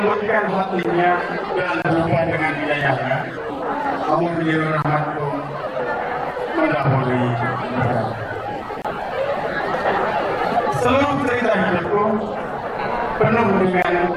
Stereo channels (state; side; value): identical; both; correlation 1.00